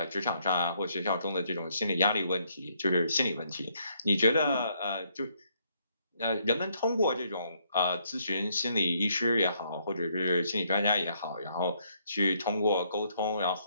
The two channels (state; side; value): inverted; both; correlation -0.71